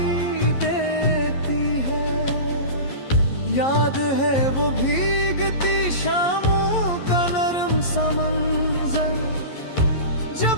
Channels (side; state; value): right; late; 11 ms